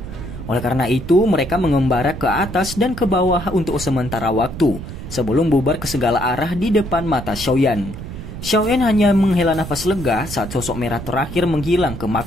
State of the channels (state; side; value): noise; right; rumble, 10 dB below the sound